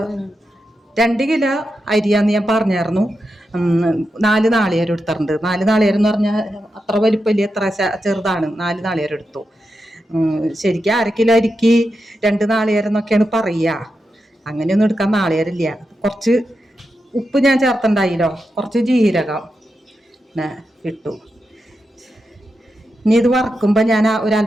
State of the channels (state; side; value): normal; both; correlation 0.88